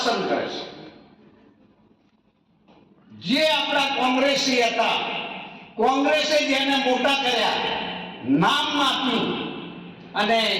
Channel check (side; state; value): both; identical; correlation 1.00